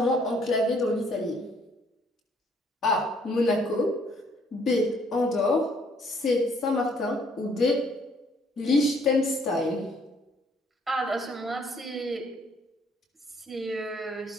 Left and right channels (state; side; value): normal; both; correlation 0.64